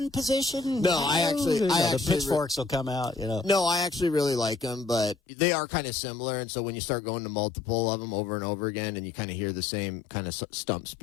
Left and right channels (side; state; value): right; drops out; at 5.2 s